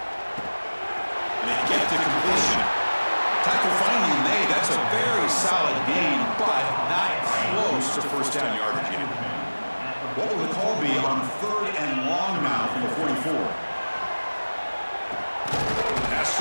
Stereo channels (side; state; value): both; inverted; correlation -1.00